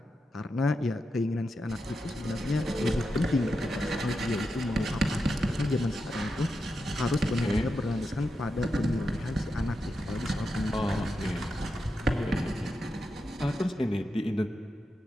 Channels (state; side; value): normal; both; correlation 0.88